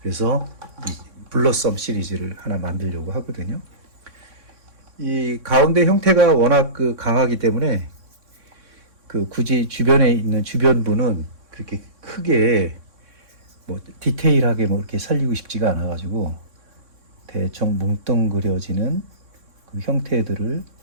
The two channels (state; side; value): late; left; 3.6 ms